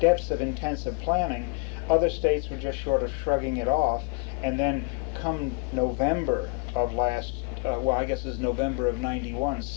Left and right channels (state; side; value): quieter; right; 31.6 dB